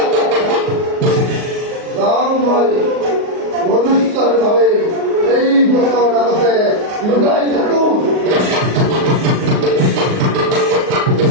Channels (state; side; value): late; left; 38 ms